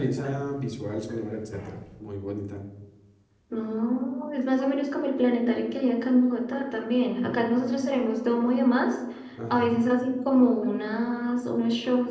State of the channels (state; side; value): identical; both; correlation 1.00